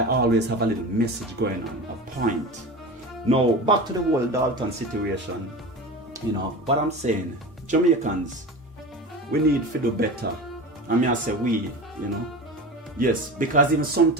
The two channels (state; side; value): normal; both; correlation 0.30